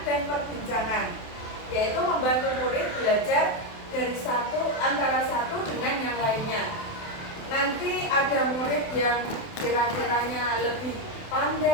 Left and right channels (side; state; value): right; late; 27 ms